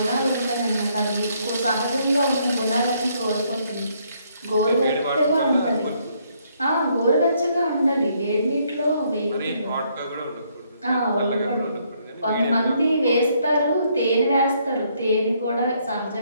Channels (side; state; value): both; inverted; correlation -0.70